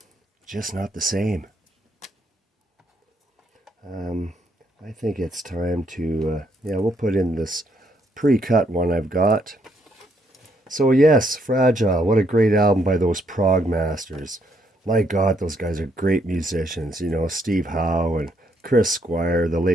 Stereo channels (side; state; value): both; normal; correlation 0.73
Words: just not the same. I think it's time to, we'll put in this pre-cut one I've got. So yes, Fragile, what a great album by those prog masters. My God, those guys are great musicians. You know, Steve Howe and Chris Squire, the